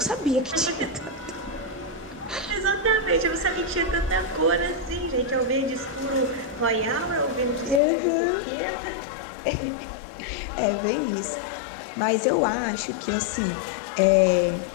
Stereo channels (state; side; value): drops out; right; at 7.8 s